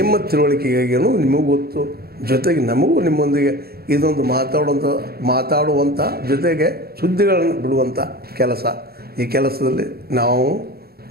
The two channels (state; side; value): late; left; 0.45 ms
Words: ತಿಳುವಳಿಕೆಗಾಗಿಯೂ ನಿಮಗೂ ಗೊತ್ತು. ಜೊತೆಗೆ ನಮಗೂ ನಿಮ್ಮೊಂದಿಗೆ ಇದೊಂದು ಮಾತಾಡುವಂಥ ಜೊತೆಗೆ ಸುದ್ದಿಗಳನ್ನು ಬಿಡುವಂಥ ಕೆಲಸ. ಈ ಕೆಲಸದಲ್ಲಿ ನಾವು